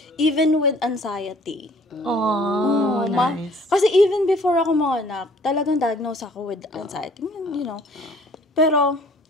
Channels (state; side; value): normal; both; correlation 0.55